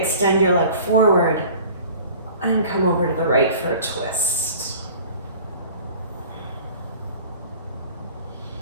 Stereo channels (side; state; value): both; inverted; correlation -0.45